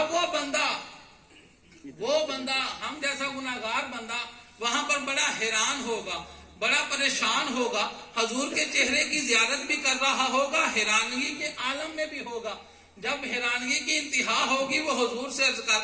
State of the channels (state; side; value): identical; both; correlation 1.00